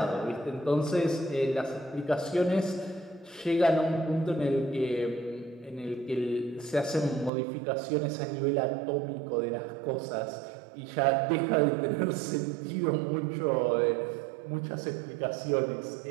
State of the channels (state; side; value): drops out; left; at 7.3 s